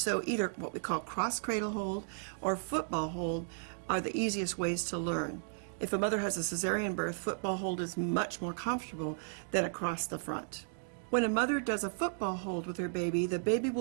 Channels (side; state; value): left; silent; digital silence